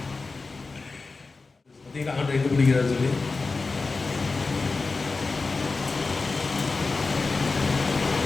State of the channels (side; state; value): right; quieter; 3.9 dB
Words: பார்த்தீங்களா ஆண்டு எங்கே பிடிக்கிறாரு சொல்லி.